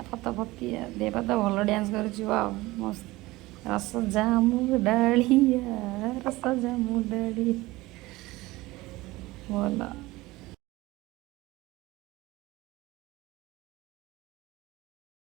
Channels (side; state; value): left; quieter; 19.7 dB